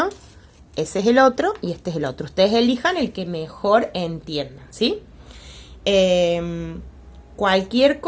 ese es el otro y este es el otro. Ustedes elijan el que mejor entiendan, ¿sí? Cualquier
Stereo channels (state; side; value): identical; both; correlation 1.00